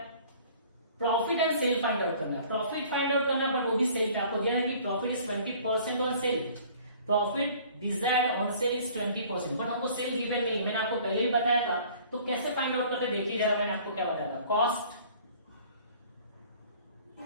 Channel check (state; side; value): inverted; both; correlation -0.51